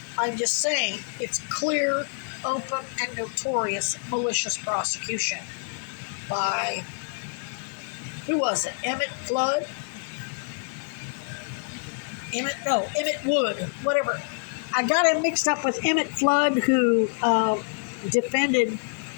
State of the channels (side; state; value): right; silent; digital silence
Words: I'm just saying it's clear, open, and notorious malicious prosecution by, who was it? Emmett Wood, whatever. I got him mixed up with Emmett Flood, who defended